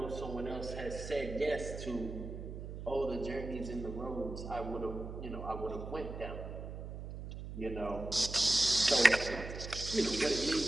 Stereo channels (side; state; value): right; noise; hum, 8 dB below the sound